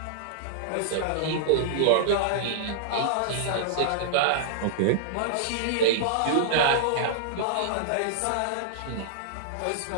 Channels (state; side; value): different; both; correlation -0.01